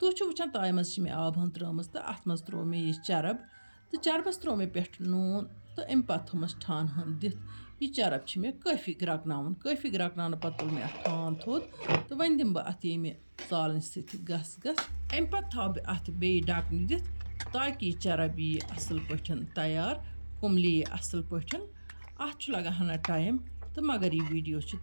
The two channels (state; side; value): inverted; both; correlation -1.00